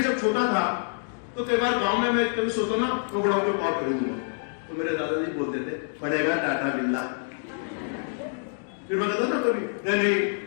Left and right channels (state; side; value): silent; right; digital silence